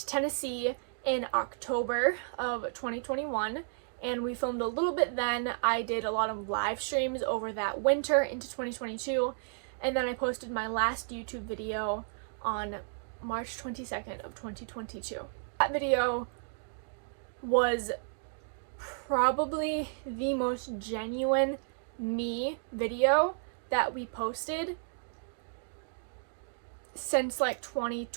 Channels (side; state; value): left; silent; digital silence